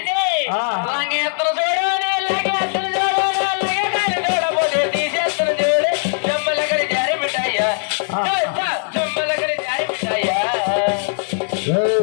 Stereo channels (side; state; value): right; silent; 64 dB below the other